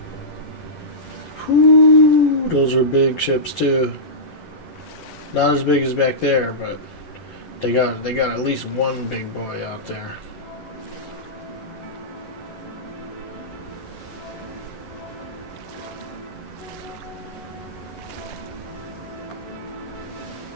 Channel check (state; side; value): late; right; 11 ms